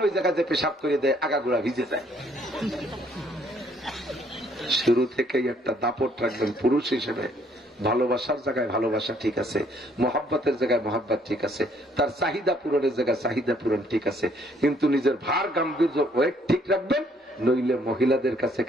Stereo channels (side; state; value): both; normal; correlation 0.65